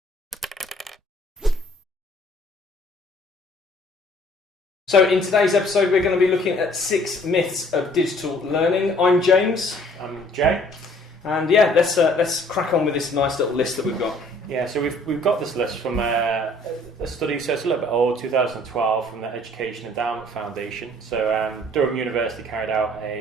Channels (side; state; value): both; normal; correlation 0.57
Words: So in today's episode we're going to be looking at 6 myths of digital learning. I'm James. I'm Jay. And yeah, let's crack on with this nice little list that we've got. Yeah, so we've got this list from a study, so it's a little bit old, 2012, from the Education Endowment Foundation. So Durham University carried out